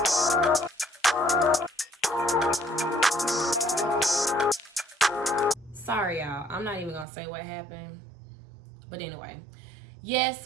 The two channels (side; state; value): left; drops out; at 7.1 s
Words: Sorry, y'all. I'm not even gonna say what happened. But anyway,